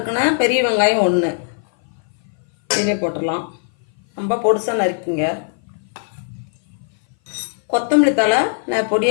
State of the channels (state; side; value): silent; right; 59 dB below the other